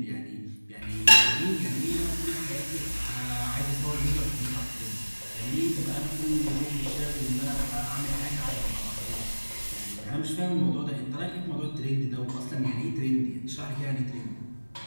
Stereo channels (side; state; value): both; inverted; correlation -1.00